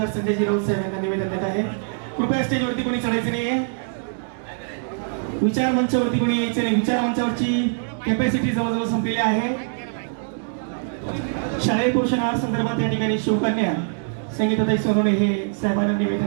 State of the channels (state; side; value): silent; left; digital silence